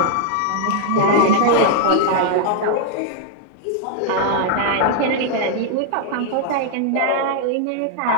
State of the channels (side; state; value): both; different; correlation 0.00